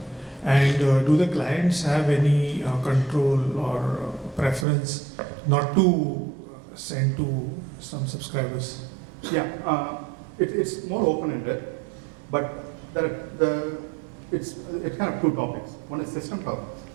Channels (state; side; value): drops out; left; at 4.7 s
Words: And do the clients have any control or preference not to send to some subscribers? Yeah, it's more open-ended, but it's kind of two topics. One is system topics,